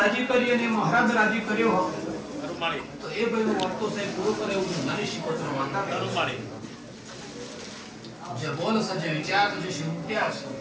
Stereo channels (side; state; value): both; identical; correlation 1.00